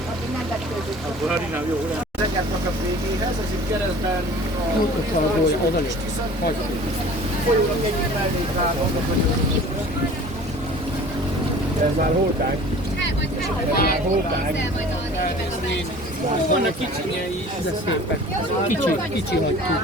nem vetődik. Akkor harinám jó, nem? Zengertnek a végéhez, ez itt keresztben Oda is. folyónak egyik mellékvágó, Ez már holták. Hát majd Vannak kicsinyei is, de szépek. Kicsi hagyjuk.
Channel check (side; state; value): both; normal; correlation 0.45